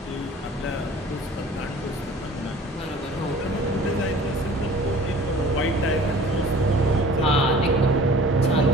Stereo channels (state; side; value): normal; both; correlation 0.46